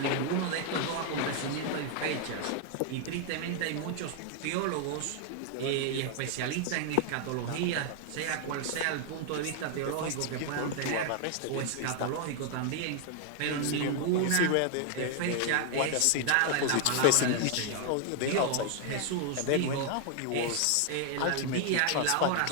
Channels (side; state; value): both; different; correlation 0.00